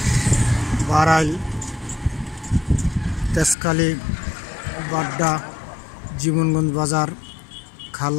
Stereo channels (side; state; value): right; drops out; at 3.6 s